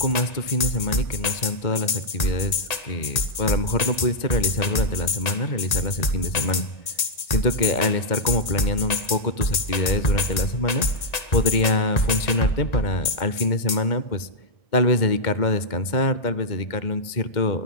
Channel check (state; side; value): late; right; 1.8 ms